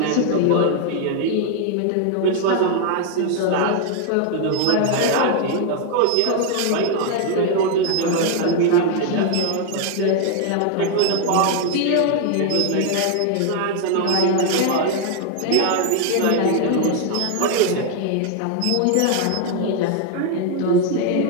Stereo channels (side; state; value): both; different; correlation 0.00